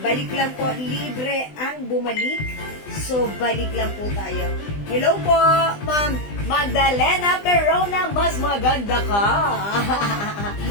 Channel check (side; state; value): right; late; 20 ms